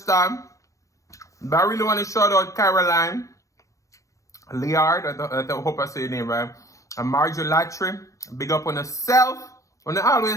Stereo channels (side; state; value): right; late; 0.15 ms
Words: started, but I really want to shout out Caroline, Liard, I hope I say your name right, and Marjorie Latry. Big up on herself. When they're